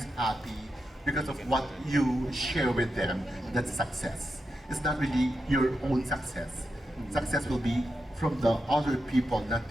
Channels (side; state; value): both; normal; correlation 0.87